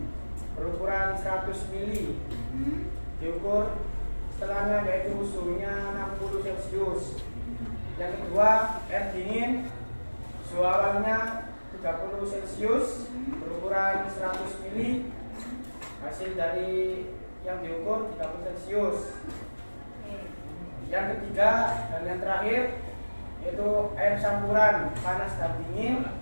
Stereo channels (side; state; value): both; inverted; correlation -1.00